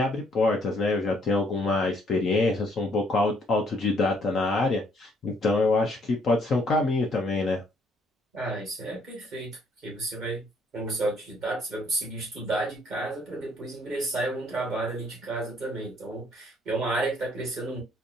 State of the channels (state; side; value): normal; both; correlation 0.66